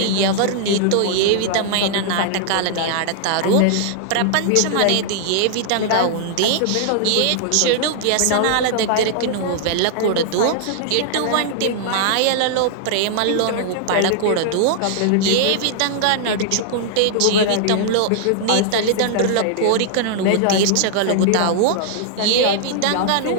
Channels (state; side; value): different; both; correlation -0.01